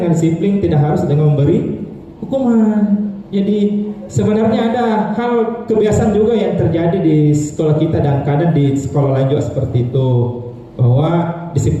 disiplin tidak harus dengan memberi hukuman. Jadi sebenarnya ada hal kebiasaan juga yang terjadi di sekolah kita dan kadang di sekolah lain juga seperti itu, bahwa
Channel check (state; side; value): identical; both; correlation 1.00